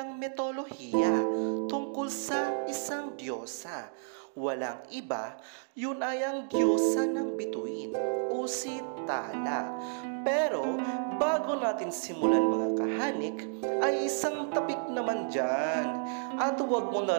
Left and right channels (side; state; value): left; silent; digital silence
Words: mitolohiya tungkol sa isang diyosa. Walang iba, yun ay ang diyosa ng bituin o si Tala. Pero bago natin simulan mga kahanik, ay isang tapik naman dyan. At huwag mo